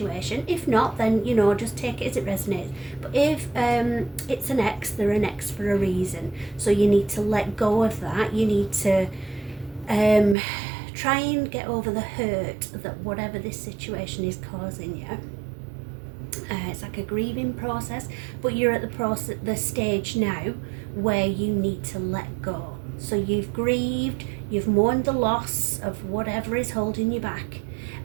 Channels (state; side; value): drops out; left; at 10.4 s